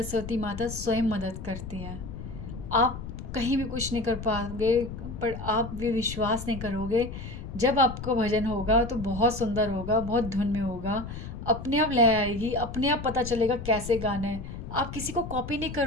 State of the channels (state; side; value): noise; left; rumble, 9 dB below the sound